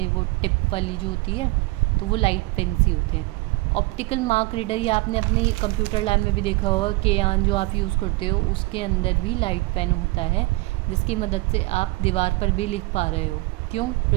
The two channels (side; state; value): left; quieter; 22.6 dB